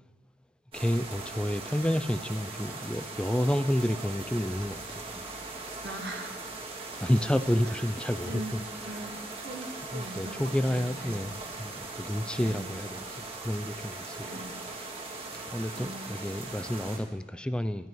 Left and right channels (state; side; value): normal; both; correlation 0.88